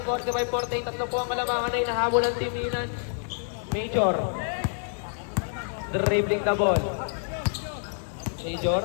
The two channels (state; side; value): silent; right; digital silence